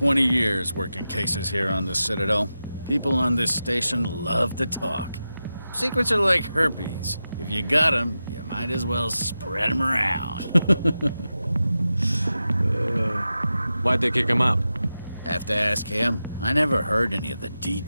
years working cases here on the Citadel. People on this station love to talk. Secrets are like herpes. If you got them, you might as well spread them around. Why'd they kick him out? Have to ask him. I never heard any of the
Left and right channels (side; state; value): both; inverted; correlation -0.92